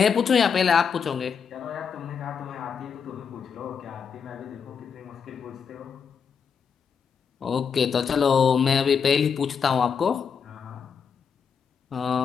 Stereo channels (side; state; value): right; quieter; 6.6 dB